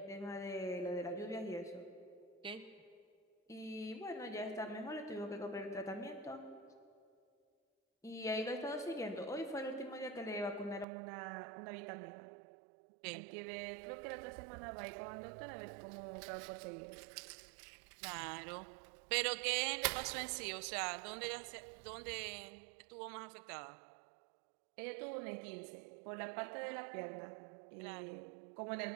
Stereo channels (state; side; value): drops out; left; at 10.9 s